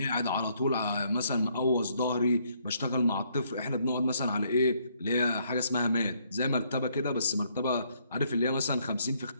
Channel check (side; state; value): both; inverted; correlation -0.70